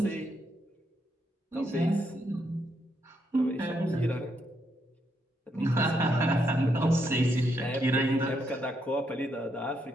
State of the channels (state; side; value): normal; both; correlation 0.78